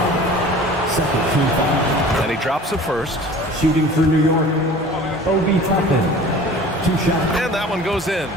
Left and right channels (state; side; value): normal; both; correlation 0.43